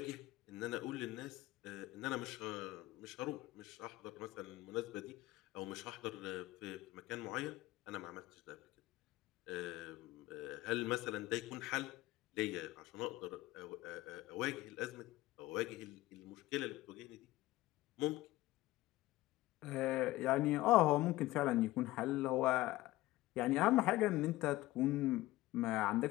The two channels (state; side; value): quieter; right; 17.6 dB